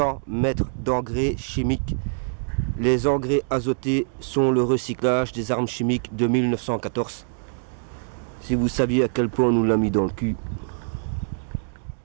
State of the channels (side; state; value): left; silent; digital silence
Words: mettre d'engrais chimiques. Les engrais azotés sont le recyclage des armes chimiques de 1914. Si vous saviez à quel point on nous l'a mis dans le cul.